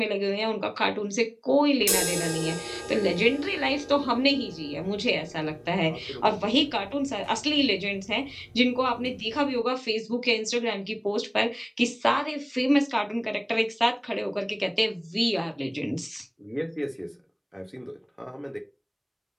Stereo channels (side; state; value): both; identical; correlation 1.00